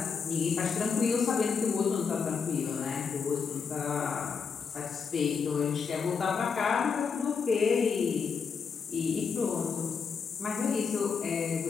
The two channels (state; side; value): quieter; right; 5.8 dB